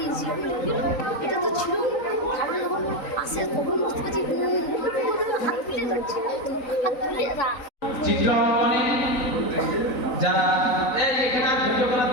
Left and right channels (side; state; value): right; late; 3.9 ms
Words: এটা তো ছিল আসে তখন বুঝতে পারছি হাত তুলে ধরছে হাত তুলে যা চিত্রাঙ্কনে যারা এই এখানে আর ভিডিও করার